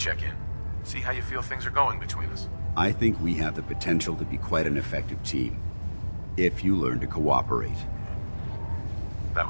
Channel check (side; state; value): both; inverted; correlation -1.00